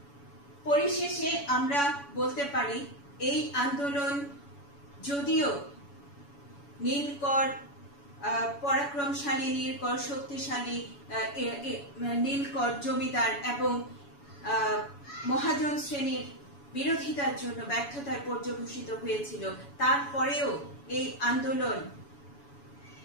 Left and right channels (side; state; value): right; late; 7.1 ms